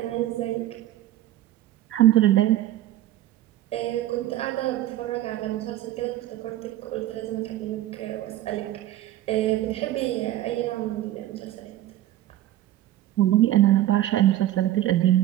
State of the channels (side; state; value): left; quieter; 13.8 dB